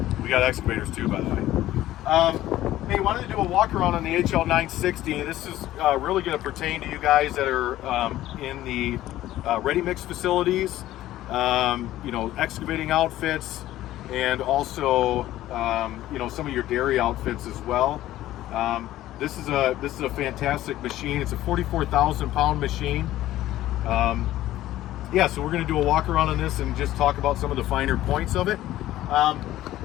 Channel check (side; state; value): right; quieter; 14.4 dB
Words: We got excavators too, by the way. Hey, wanted to do a walk around on the HL960. This is really going to pertain to you guys that are in the ready mix facilities, excavating outfits, and also some of your dairy outfits as well. This is a fantastic machine. It's a 44,000 pound machine. So we're going to do a walk around on this and just talk about some of the finer points of it.